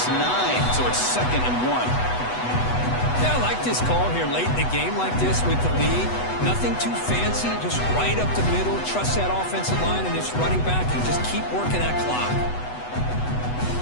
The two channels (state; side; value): late; right; 8.1 ms